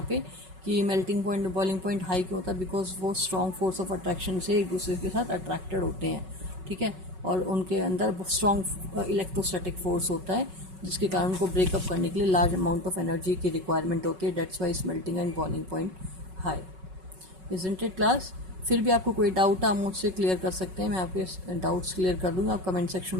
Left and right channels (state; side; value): late; left; 5.4 ms